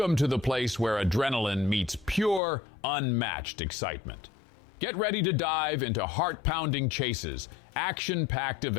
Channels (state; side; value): drops out; right; at 2.4 s